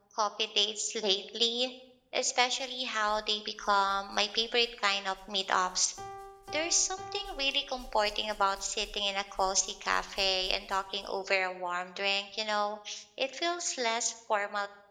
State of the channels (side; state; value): both; identical; correlation 1.00